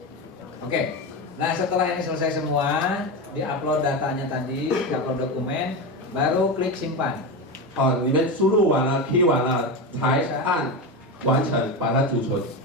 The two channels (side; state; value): both; normal; correlation 0.18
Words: Oke, nah setelah ini selesai semua, diupload datanya tadi, diupload dokumen, baru klik simpan. 你们输入完了 ，key 完了，才按完成，把它储存。